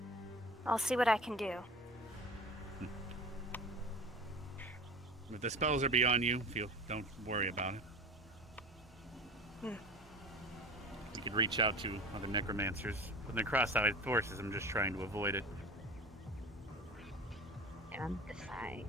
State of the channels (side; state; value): both; normal; correlation 0.35